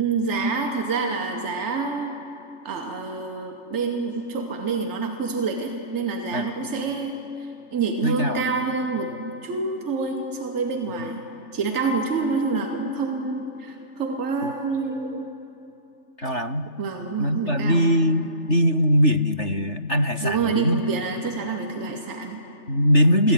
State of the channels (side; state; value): right; late; 3.4 ms